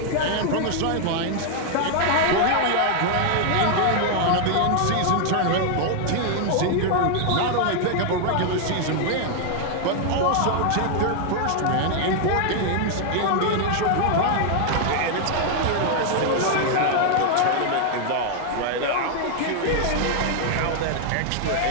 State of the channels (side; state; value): both; different; correlation 0.00